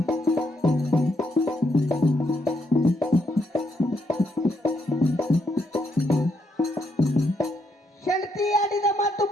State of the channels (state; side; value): normal; both; correlation 0.76